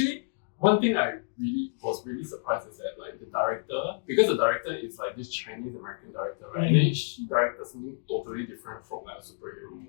one thing I was really surprised is that the director, because the director is this Chinese American director, right? And then she directed something totally different from a superhero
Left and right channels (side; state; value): right; silent; digital silence